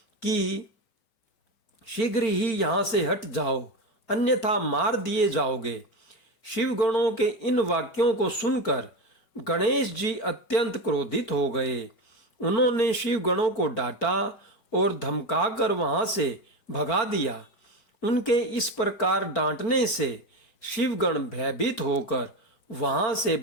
कि शीघ्र ही यहाँ से हट जाओ, अन्यथा मार दिए जाओगे। शिवगणों के इन वाक्यों को सुनकर गणेश जी अत्यंत क्रोधित हो गए। उन्होंने शिवगणों को डांटा और धमकाकर वहां से भगा दिया। उनके इस प्रकार डांटने से शिवगण भयभीत होकर वहां से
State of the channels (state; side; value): late; right; 4.4 ms